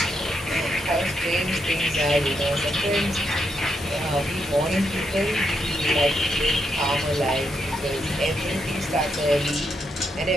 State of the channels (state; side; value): normal; both; correlation 0.80